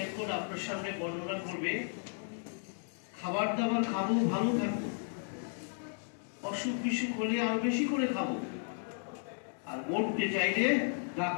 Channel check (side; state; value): right; silent; 55 dB below the other